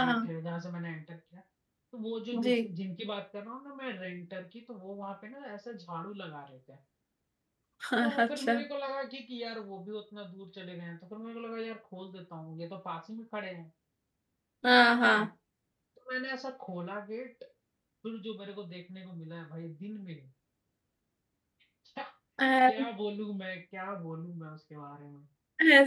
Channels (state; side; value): identical; both; correlation 1.00